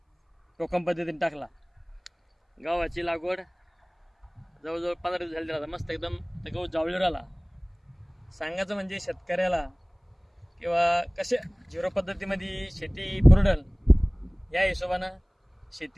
टोकन पद्धतीने टाकला. गव्हाची लागवड जवळजवळ 15 दिवस झाली राहता. मस्त एकदम ते गहू जावळीवर आला. सांगायचं म्हणजे शेतकऱ्याला किंवा कसे झिरो पद्धतीमध्ये शेती पुरडल या हिशोबानं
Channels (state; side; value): identical; both; correlation 1.00